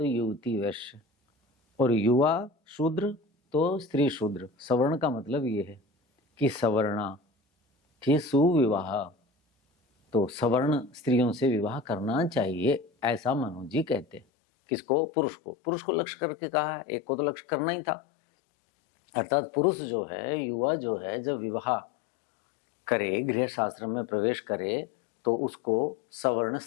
युवती वैश्य, और युवा शूद्र तो स्त्री शूद्र। सवर्ण का मतलब ये है कि सवर्णा कि सुविवाह, तो सवर्ण स्त्रियों से विवाह करना चाहिए, ऐसा मनु जी कहते हैं। किसको? पुरुष को। पुरुष को लक्ष्य करके कहा है, एक को तो लक्ष्य करना ही था। अर्थात पुरुष जो है, युवा जो है, जब विवाह करे, गृह शास्त्र में प्रवेश करे, तो उसको सवर्ण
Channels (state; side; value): drops out; right; at 14.2 s